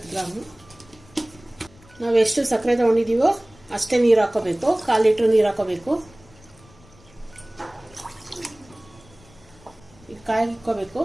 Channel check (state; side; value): noise; left; rumble, 26 dB below the sound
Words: ಗ್ರಾಮ್. ನಾವು ಎಷ್ಟು ಸಕ್ಕರೆ ತಗೊಂಡಿದ್ದೀವೋ ಅಷ್ಟೇ ನೀರು ಹಾಕೋಬೇಕು. 1/4 ಲೀಟರ್ ನೀರು ಹಾಕೋಬೇಕು. ಇದು ಕಾಯಿಗೆ ಇಕ್ಕೋಬೇಕು.